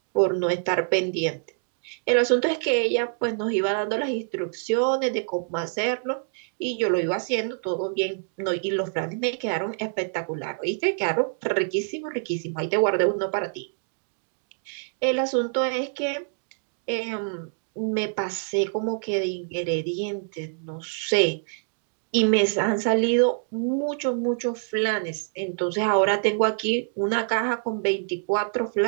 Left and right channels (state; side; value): silent; left; digital silence